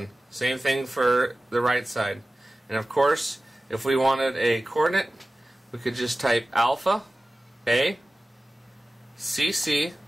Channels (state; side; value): normal; both; correlation 0.96